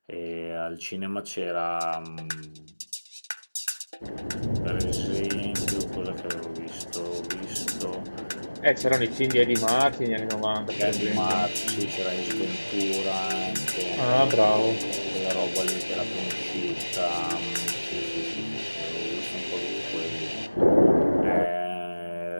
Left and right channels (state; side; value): inverted; both; correlation -1.00